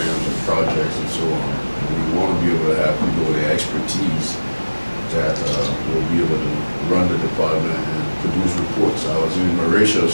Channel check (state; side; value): inverted; both; correlation -1.00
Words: and projects and so on. And we want to be able to have people with the expertise that will be able to run the department and produce reports. I was in